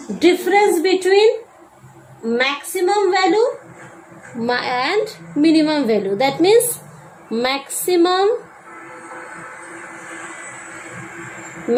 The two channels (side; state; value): both; identical; correlation 1.00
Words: difference between maximum value and minimum value. That means maximum